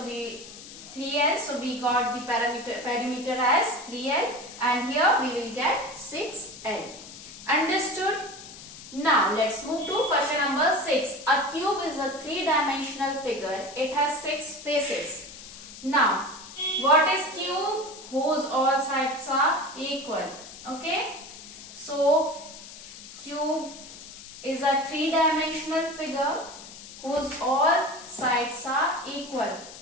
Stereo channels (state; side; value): noise; left; hiss, 15 dB below the sound